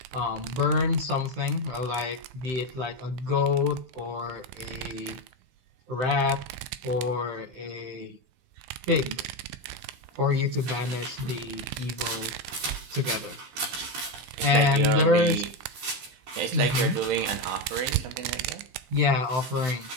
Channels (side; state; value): left; late; 16 ms